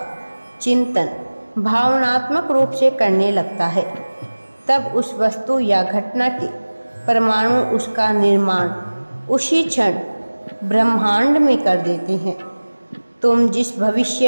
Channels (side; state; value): both; inverted; correlation -1.00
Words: चिंतन भावनात्मक रूप से करने लगता है, तब उस वस्तु या घटना के परमाणु उसका निर्माण उसी क्षण ब्रह्मांड में कर देते हैं। तुम जिस